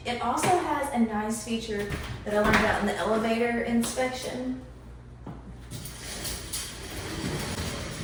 It also has a nice feature that I learned about in the elevator inspection.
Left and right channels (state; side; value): identical; both; correlation 1.00